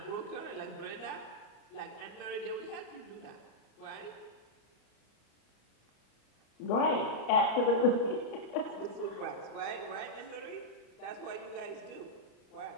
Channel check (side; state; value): right; late; 34 ms